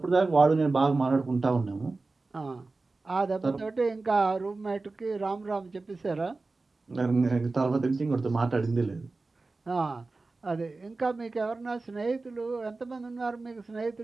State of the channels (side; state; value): left; quieter; 3.6 dB